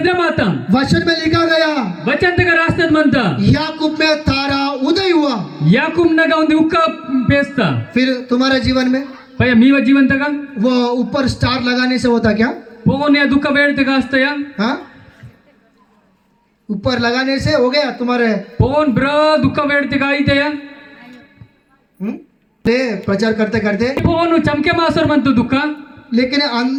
ಮಾತ वचन में लिखा गया ವಚಂತಗ ರಾಸ್ತದ ಮಂತ याकूब में तारा उदय हुआ ಯಾಕೂಬ್ನಗ ಒಂದು ಉಕ್ಕ ಪೇಸ್ತ फिर तुम्हारे जीवन में ಪಯ ಮೀವ ಜೀವಂತಗ वो ऊपर स्टार लगाने से होता क्या ಪೋಗೋನೆ ದುಃಖ ಬೇಡ್ತಗ ಅಸ್ತಯ हाँ ऊपर लगाने से हो गया तुम्हारे ಪೋನ್ ಬ್ರ ದುಃಖ ಬೇಡ್ತಗ ಆಯ್ತಯ ले प्रचार करते करते ಪೋನು ಚಮಕೆ ಮಾಸರ್ ಮಂತು ದುಃಖ लेकिन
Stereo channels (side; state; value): both; identical; correlation 1.00